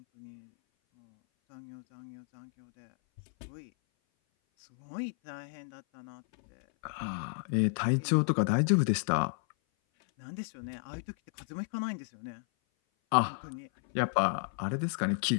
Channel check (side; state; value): right; silent; 56 dB below the other